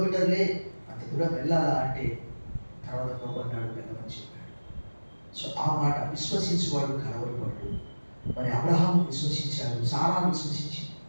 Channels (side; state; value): both; inverted; correlation -1.00